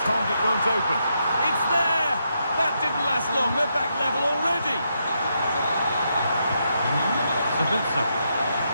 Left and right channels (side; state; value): both; inverted; correlation -0.81